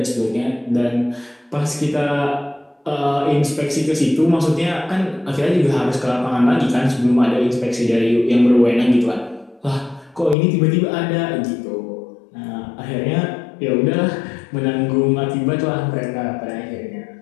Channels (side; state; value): right; drops out; at 10.4 s